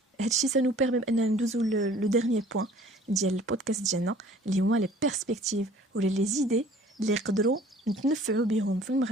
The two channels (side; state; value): both; normal; correlation 0.52